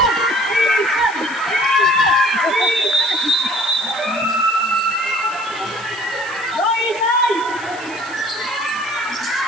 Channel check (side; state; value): right; noise; hiss, 19 dB below the sound